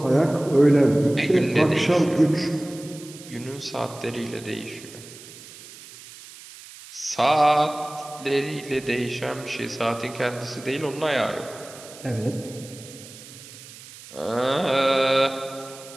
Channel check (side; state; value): right; noise; hiss, 18 dB below the sound